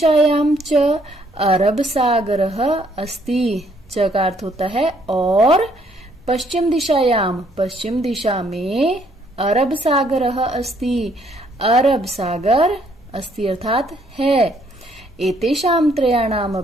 च अरब सागरः अस्ति, च का अर्थ होता है और, पश्चिम दिशायाम, पश्चिम दिशा में अरब सागरः अस्ति, अरब सागर अस्ति अर्थात है। एतेषां त्रयाणाम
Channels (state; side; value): normal; both; correlation 0.67